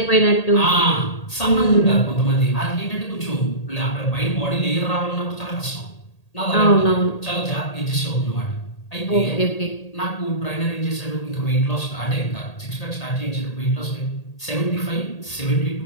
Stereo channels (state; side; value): late; right; 1.8 ms